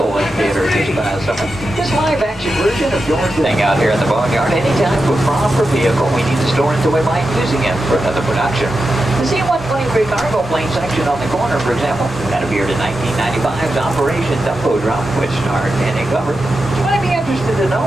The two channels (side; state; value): both; normal; correlation 0.90